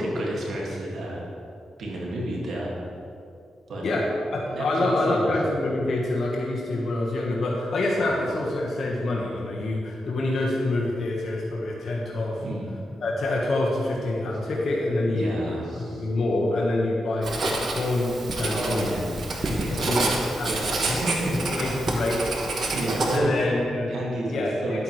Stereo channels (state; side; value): normal; both; correlation 0.85